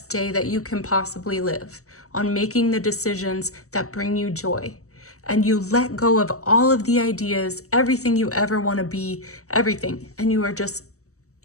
day that you can possibly live, on making the decisions that bring you joy. And you let go of all of the ideas, everything you ever want to be, everything. And you are just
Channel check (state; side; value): late; right; 0.65 ms